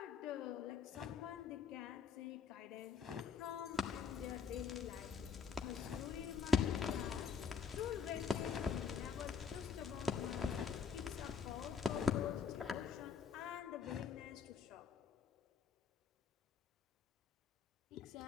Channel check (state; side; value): quieter; right; 6.1 dB